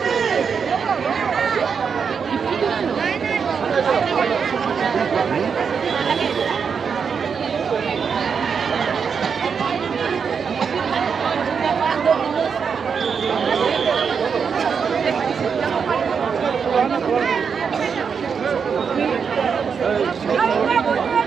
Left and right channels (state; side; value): quieter; left; 6.3 dB